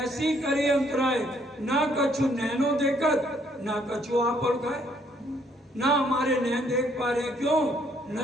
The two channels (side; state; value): both; normal; correlation 0.67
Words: करी अंतराय, ना कछु नैनो देखत ना कछु आप खाए। ना हमारे नैन देख पा रहे, क्यों?